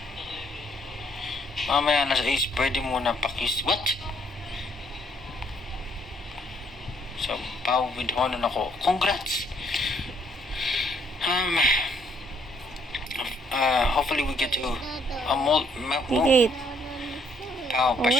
Mamaya na sa Ace, pwede muna pakis. What? So, Pau with honor ako. Congrats! Hopefully we get to Higit. Pau,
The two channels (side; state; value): both; normal; correlation 0.67